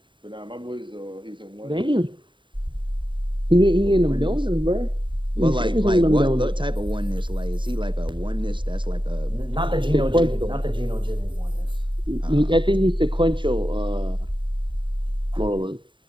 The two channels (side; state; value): left; late; 0.23 ms